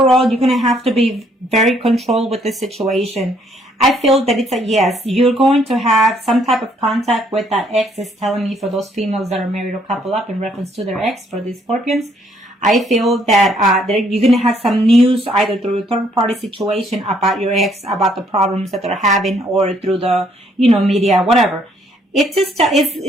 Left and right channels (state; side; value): normal; both; correlation 0.67